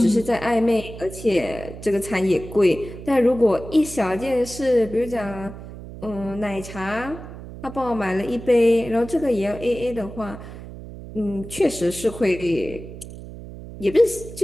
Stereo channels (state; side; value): noise; right; hum, 13 dB below the sound